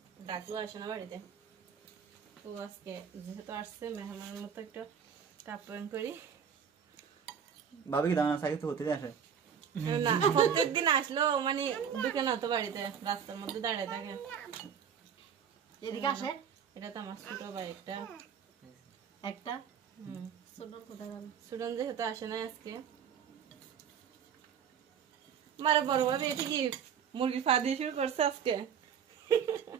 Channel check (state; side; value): quieter; left; 7.7 dB